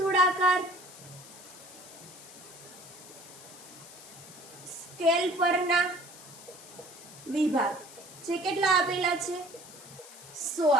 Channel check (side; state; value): left; noise; hiss, 17 dB below the sound